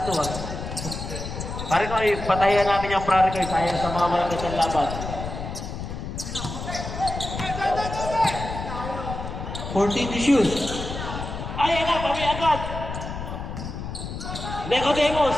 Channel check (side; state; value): left; noise; rumble, 7 dB below the sound